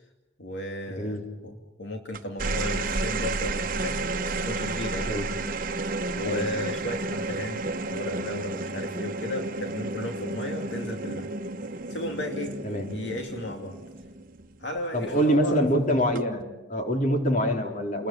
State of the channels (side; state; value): both; normal; correlation 0.32